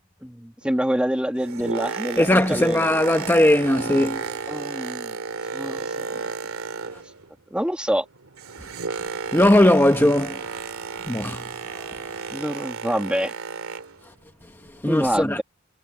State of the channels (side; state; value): both; normal; correlation 0.80